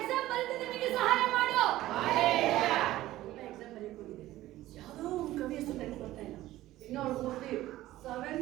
ಬರೀತಿದ್ದೆ, ನನಗೆ ಸಹಾಯ ಮಾಡು. ಎಕ್ಸಾಮ್ ಬರೀಕ್ ಹೋಗಿದೆ, ಯಾವುದೋ ಒಂದು ಕವಿ ಹೆಸರು ನೆನಪು ಬರ್ತಾ ಇಲ್ಲ. ಇನ್ನೂ ಅವ್ರು ಹೋಗಿ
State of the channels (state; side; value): quieter; left; 15.5 dB